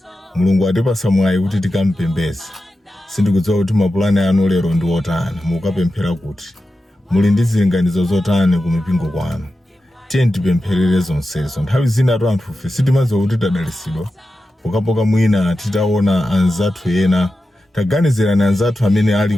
Mulungu atipasa mwayi kuti tikampembeze. Sindikudziwa kuti mapulani anu lero ndi otani, mukapemphera kuti muli ndi zilinganizo zotani ku mipingo kwanu. Tiye tipempherere zonsezo. Nthawi zina anthu ife sitimadziwa kuti tadalisidwa pokapoka mwina titaona anzathu ena, taganizirani anzathu amene ali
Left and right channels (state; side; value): normal; both; correlation 0.91